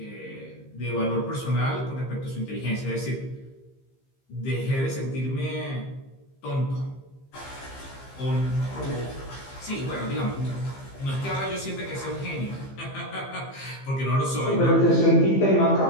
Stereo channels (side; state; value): right; late; 15 ms